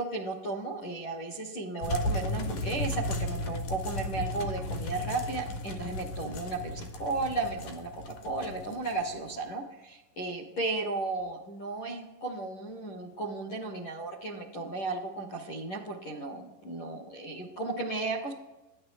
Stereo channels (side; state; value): right; late; 11 ms